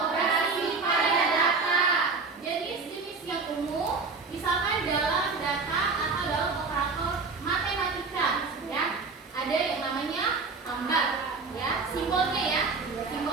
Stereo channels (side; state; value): left; quieter; 4.3 dB